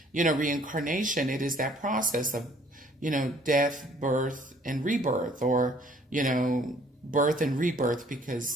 reincarnation, it is that process of, death, birth, and rebirth, or, birth and rebirth,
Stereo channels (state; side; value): normal; both; correlation 0.59